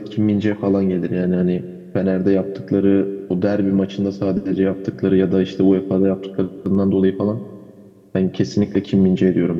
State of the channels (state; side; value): identical; both; correlation 1.00